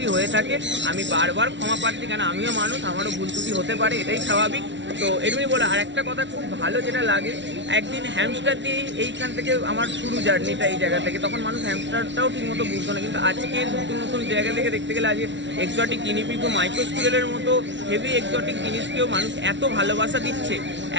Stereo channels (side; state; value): left; late; 0.53 ms